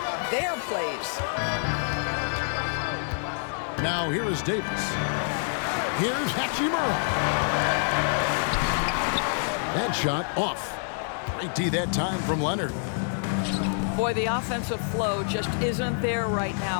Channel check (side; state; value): right; silent; 60 dB below the other